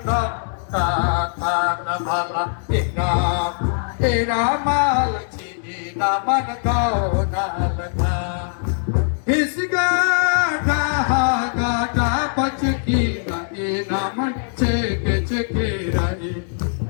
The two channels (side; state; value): right; silent; digital silence